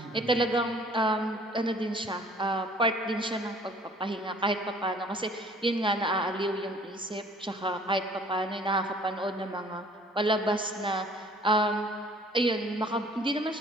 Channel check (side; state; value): both; normal; correlation 0.54